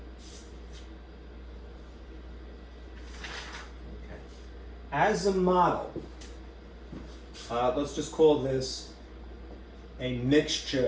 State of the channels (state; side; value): identical; both; correlation 1.00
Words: Okay. As a model, let's just call this a